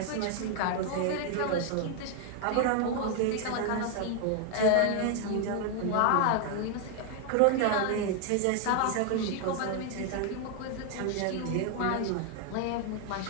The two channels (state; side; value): different; both; correlation 0.00